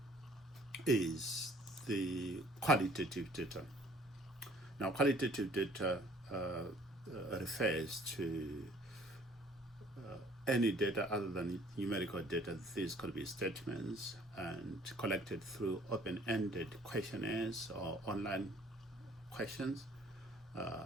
is the qualitative data. Now, qualitative data refers to any data other than numerical data. These could be statements and collected through open-ended questionnaires or online questions,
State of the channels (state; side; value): normal; both; correlation 0.56